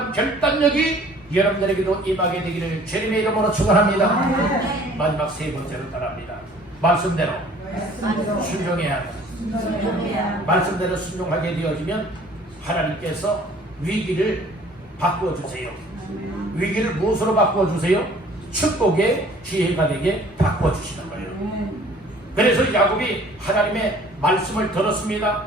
결단력이 여러분들에게도 임하게 되기를 주님의 이름으로 축원합니다. 마지막 세 번째로 따라합니다. 말씀대로 순종해야 합니다. 말씀대로 순종하게 되어지면 하나님께서 위기를 바꿔주세요. 위기를 무엇으로 바꿔주세요? 축복의 기회가 되게 바꿔주시는 거예요. 그래서 야곱이 하나님의 말씀을 들었습니다.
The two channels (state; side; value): normal; both; correlation 0.53